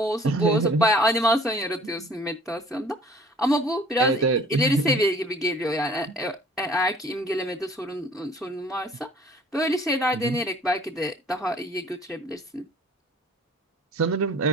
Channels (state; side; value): normal; both; correlation 0.53